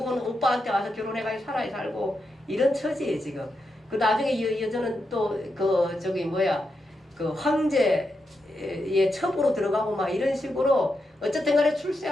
오빠한테 와서 결혼해가지고 살고 이런 처지예요, 지금. 나중에 이 여자는 또 황제 예, 첩으로 들어가고 막 이런 식으로 어쨌든 간에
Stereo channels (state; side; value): normal; both; correlation 0.85